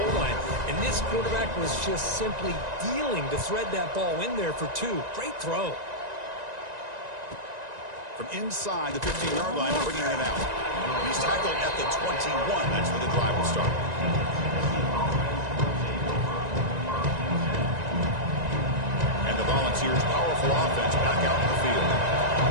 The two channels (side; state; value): left; late; 1.9 ms